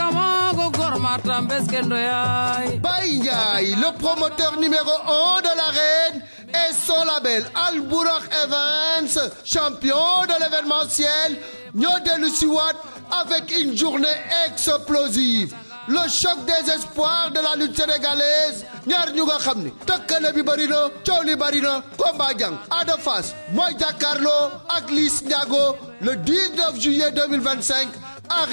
Gormata Mbeskendo Yai. Baïngaï, le promoteur numéro 1 de l'arène et son label Al Bourakh Events, champion de l'événementiel, Nyodelu Siwat avec une journée explosive. Le choc des espoirs de la lutte sénégalaise. Ñaar ñu nga xam ni tëkkale bi bari na coow li bari na combat jàng Ada Fass mooy jàkkaarloo ak Liss Ndiago le 19 juillet 2025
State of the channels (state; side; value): inverted; both; correlation -1.00